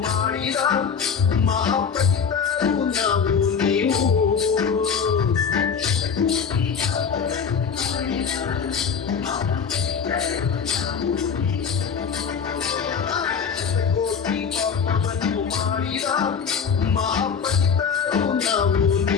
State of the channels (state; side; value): quieter; right; 6.5 dB